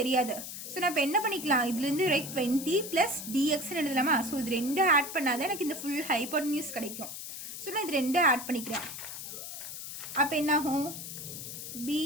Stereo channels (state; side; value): noise; left; hiss, 9 dB below the sound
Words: தெரியாது. ஸோ நான் இப்போ என்ன பண்ணிக்கலாம், இதுலேருந்து ரைட் 20 ப்ளஸ் டிஎக்ஸ்ன்னு எழுதலாமா. ஸோ இது ரெண்டும் ஆட் பண்ணாதான் எனக்கு இந்த ஃபுல் ஹைப்போட்டனியூஸ் கிடைக்கும். ஸோ நான் இது ரெண்டும் ஆட் பண்ணிக்கிறேன். அப்போ என்னாகும்,